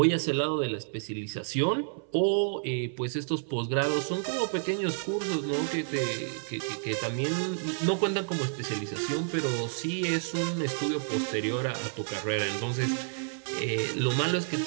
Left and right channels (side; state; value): left; silent; 58 dB below the other